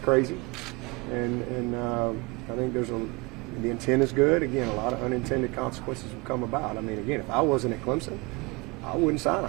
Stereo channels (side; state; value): left; quieter; 27.0 dB